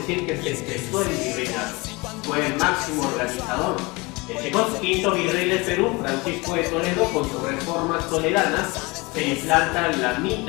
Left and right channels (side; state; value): right; quieter; 25.1 dB